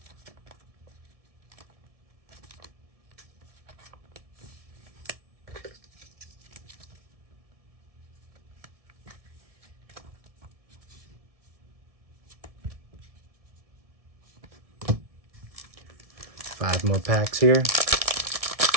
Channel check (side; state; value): left; late; 1.7 ms